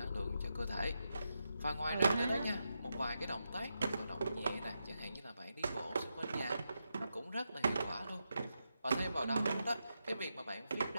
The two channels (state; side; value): inverted; both; correlation -0.87